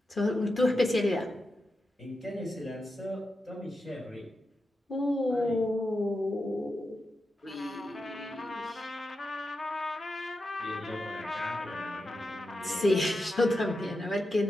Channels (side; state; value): both; normal; correlation 0.89